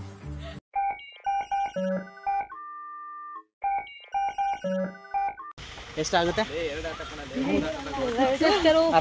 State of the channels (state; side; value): identical; both; correlation 1.00